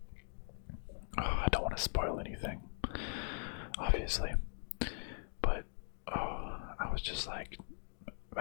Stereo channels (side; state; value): right; silent; 51 dB below the other